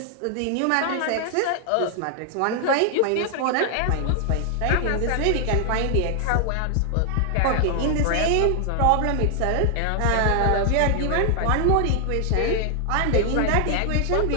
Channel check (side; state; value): both; different; correlation 0.00